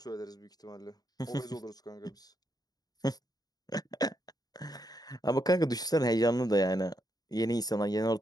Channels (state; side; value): late; right; 0.19 ms